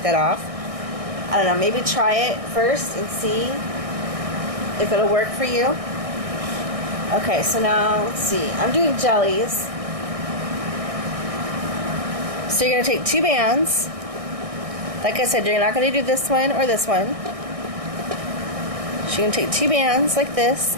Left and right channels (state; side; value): late; left; 1.6 ms